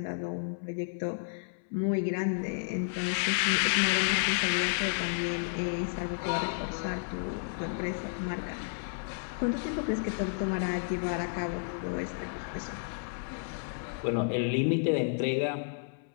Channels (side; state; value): right; silent; 57 dB below the other